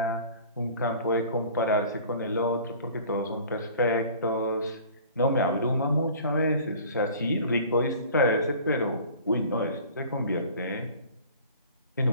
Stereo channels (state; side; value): inverted; both; correlation -0.46